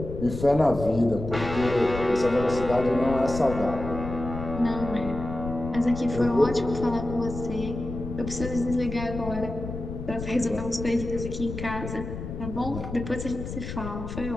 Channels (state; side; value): noise; left; rumble, 8 dB below the sound